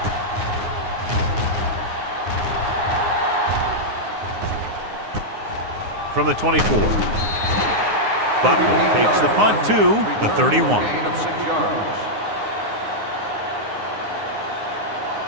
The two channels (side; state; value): left; late; 9.6 ms